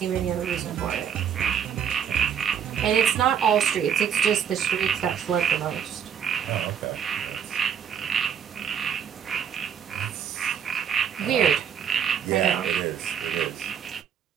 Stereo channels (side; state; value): left; quieter; 8.1 dB